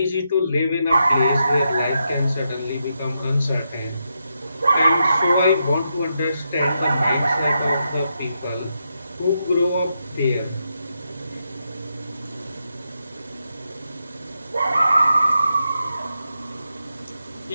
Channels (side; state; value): both; inverted; correlation -0.84